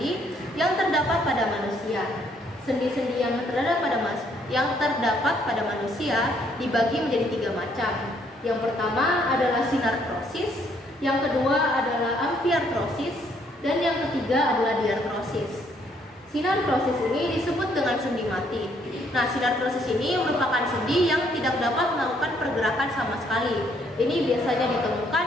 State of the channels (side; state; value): both; normal; correlation 0.68